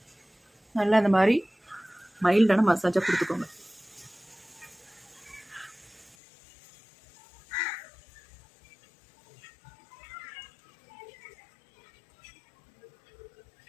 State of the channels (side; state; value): right; drops out; at 6.2 s